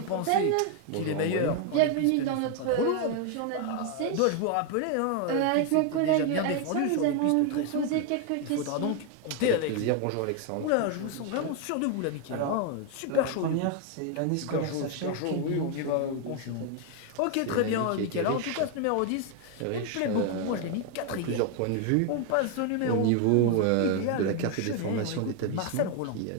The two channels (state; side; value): different; both; correlation 0.01